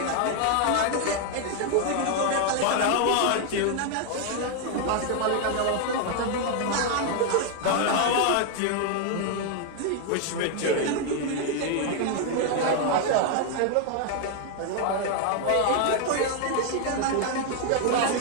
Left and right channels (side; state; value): both; different; correlation 0.00